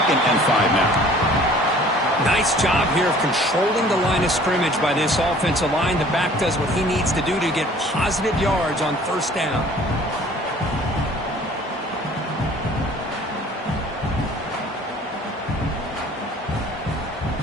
and 5 now. Nice job here of controlling the line of scrimmage by this offensive line. The back does what he needs to do to get positive yards on 1st down.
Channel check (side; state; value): both; normal; correlation 0.51